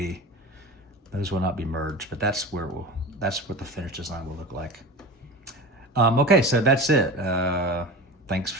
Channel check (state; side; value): normal; both; correlation 0.31